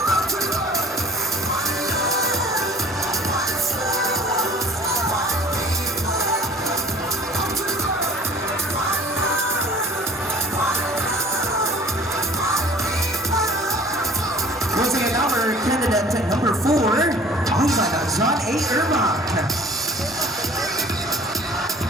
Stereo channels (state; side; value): normal; both; correlation 0.49